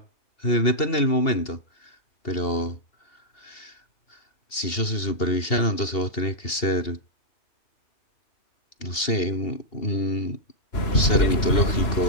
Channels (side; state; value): right; late; 2.8 ms